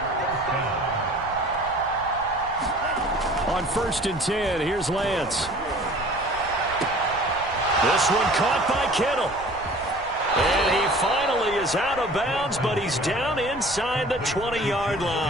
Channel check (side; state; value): right; noise; rumble, 18 dB below the sound